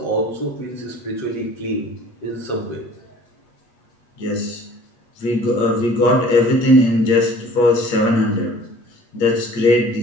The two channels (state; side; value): late; right; 8.2 ms